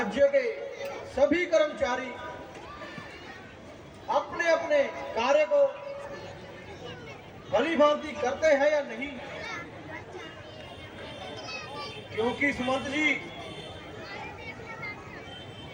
के सभी कर्मचारी अपने अपने कार्य को भली भांति करते हैं या नहीं? क्योंकि सुमंत जी,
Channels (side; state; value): both; identical; correlation 1.00